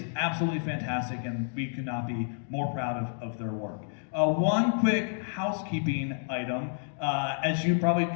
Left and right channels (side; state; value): right; silent; digital silence